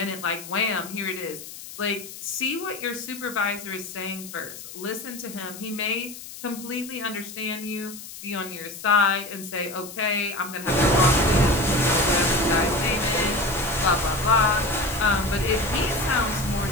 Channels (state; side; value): noise; left; hiss, 13 dB below the sound